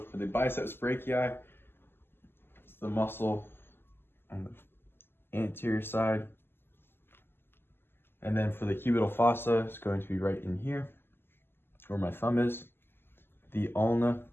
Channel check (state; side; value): late; right; 0.11 ms